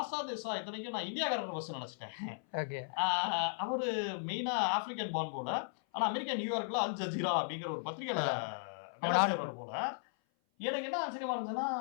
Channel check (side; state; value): right; silent; 54 dB below the other